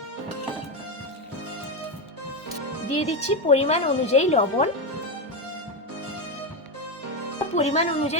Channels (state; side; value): normal; both; correlation 0.11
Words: দিয়ে দিচ্ছি পরিমাণ অনুযায়ী লবণ, পরিমাণ